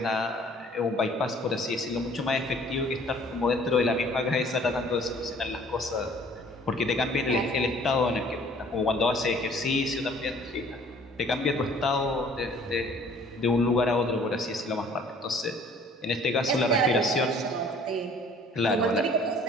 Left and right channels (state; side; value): normal; both; correlation 0.54